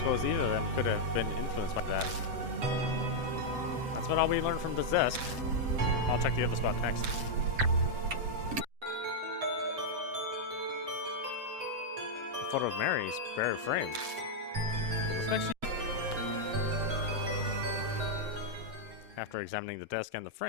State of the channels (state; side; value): late; left; 7.7 ms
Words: either of them could have been influenced by that. That's what all we learned from this desk. I'll check the other spot next. A photo of Mary's bare frame. Looks like she... After examining the desk and the